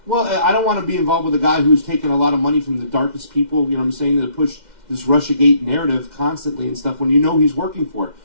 Well, I don't want to be involved with a guy who's taken a lot of money from the darkest people, you know what I'm saying, to push this Russiagate narrative constantly and stuff when you know he's working for it.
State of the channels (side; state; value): left; late; 2.1 ms